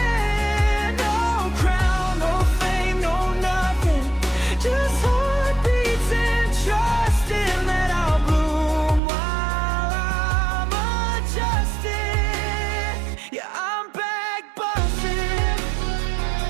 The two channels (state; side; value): drops out; left; at 9.0 s